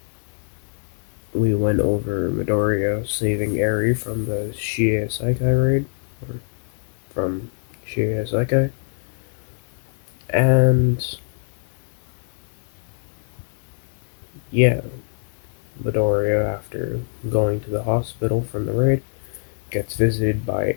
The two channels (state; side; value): silent; right; digital silence